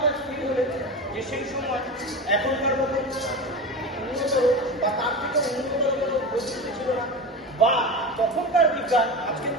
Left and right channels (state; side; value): normal; both; correlation 0.25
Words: স্থির হলেন যে সেই সময় এখনকার মতো উন্নত বা তার থেকে উন্নত কোনো প্রযুক্তি ছিল না, বা তখনকার বিজ্ঞান আজকের